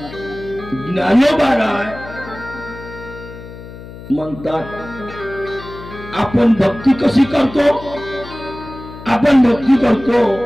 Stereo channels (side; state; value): left; noise; hum, 15 dB below the sound